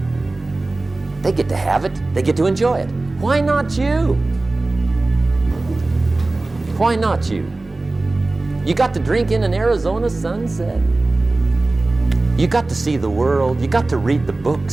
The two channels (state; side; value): quieter; left; 3.1 dB